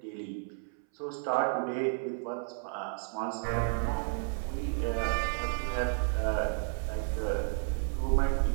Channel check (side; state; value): left; silent; 56 dB below the other